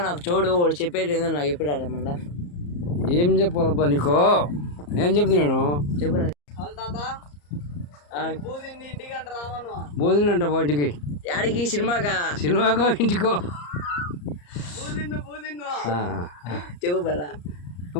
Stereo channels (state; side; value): late; right; 34 ms